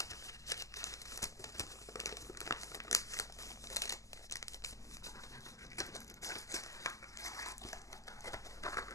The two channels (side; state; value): right; late; 0.16 ms